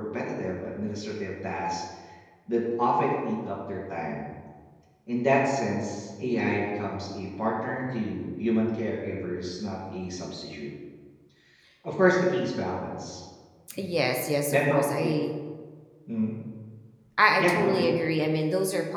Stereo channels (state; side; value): identical; both; correlation 1.00